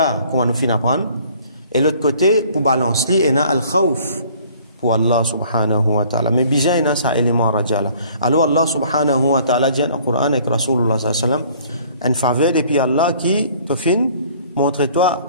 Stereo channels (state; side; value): inverted; both; correlation -0.55